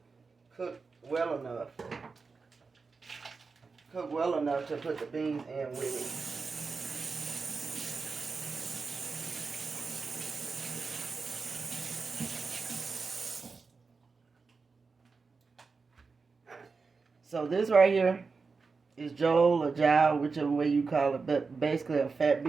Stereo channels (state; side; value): quieter; left; 4.6 dB